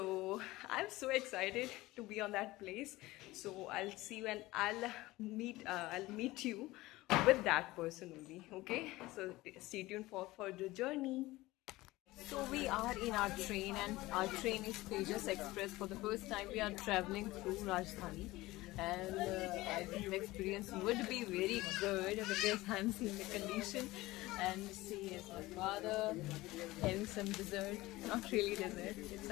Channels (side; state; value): right; quieter; 18.9 dB